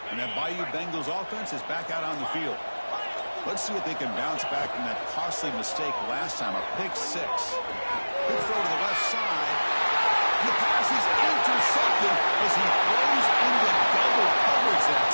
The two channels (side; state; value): both; inverted; correlation -1.00